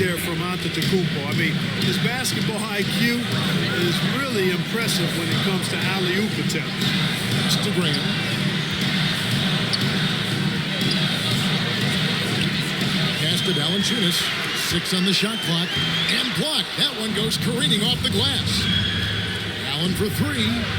from Antetokounmpo. I mean, his basketball IQ is really impressive when it comes to alley-oop attempts. It's to Graham. Pass to Valanciunas. 6 on the shot clock. And blocked. That one goes careening off the glass. Allen for 3.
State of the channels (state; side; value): identical; both; correlation 1.00